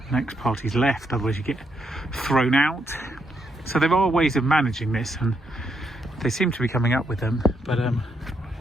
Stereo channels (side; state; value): both; normal; correlation 0.78